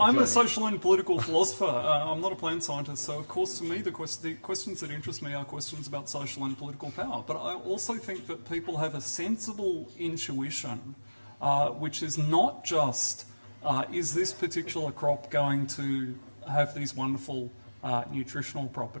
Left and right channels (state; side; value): inverted; both; correlation -1.00